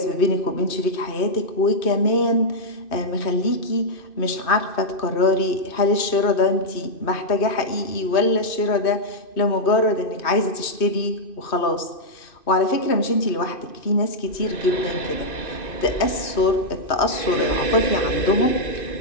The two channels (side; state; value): right; late; 2.6 ms